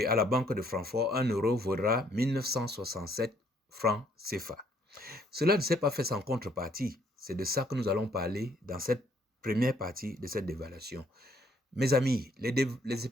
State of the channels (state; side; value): normal; both; correlation 0.66